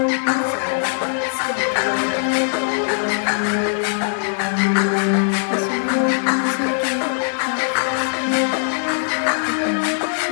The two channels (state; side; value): silent; right; digital silence